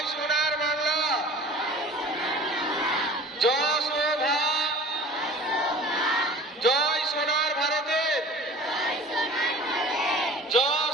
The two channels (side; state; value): both; normal; correlation 0.43